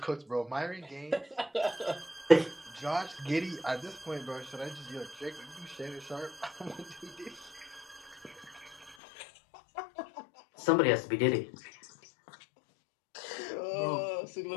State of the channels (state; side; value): drops out; right; at 9.0 s